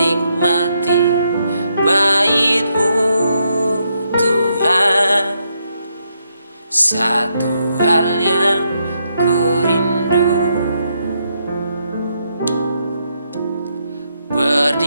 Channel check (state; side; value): inverted; both; correlation -0.78